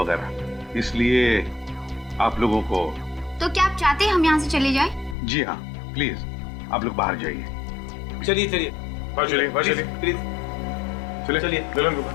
वगैरह। इसलिए आप लोगों को। तो क्या आप चाहते हैं हम यहाँ से चले जाएं? जी हाँ, प्लीज आप लोग बाहर जाइए। चलिए चलिए चलिए प्लीज चलिए।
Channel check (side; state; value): right; drops out; at 5.2 s